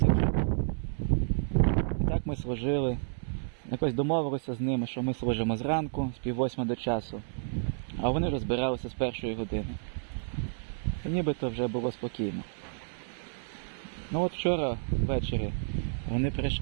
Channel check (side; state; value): left; silent; 57 dB below the other